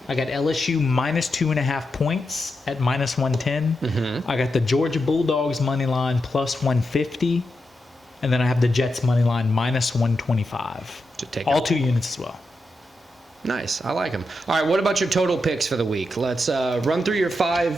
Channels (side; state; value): both; normal; correlation 0.87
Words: I got LSU -2.5 points at -110. Mm-hmm. I got the Georgia Bulldogs money line +150, and then I have the Jets money line -125. All 2 units as well. Nice. I like them. All right, what about your total picks for the week? Let's run through your